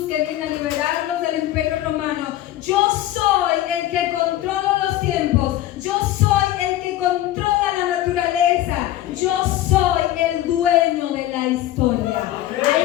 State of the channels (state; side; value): quieter; right; 14.1 dB